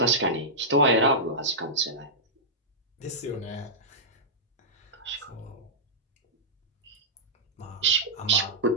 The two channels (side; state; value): both; normal; correlation -0.13